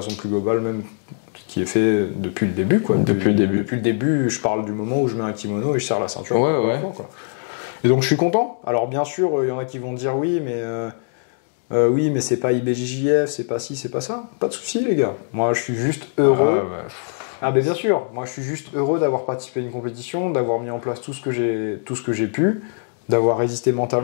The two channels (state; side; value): silent; right; digital silence